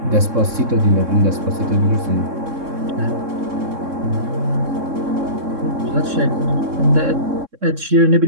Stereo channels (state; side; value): late; left; 3.6 ms